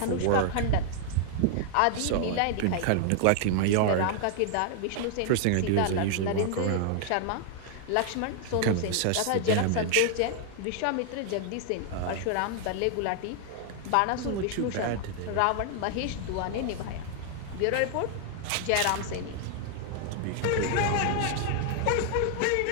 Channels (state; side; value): different; both; correlation 0.00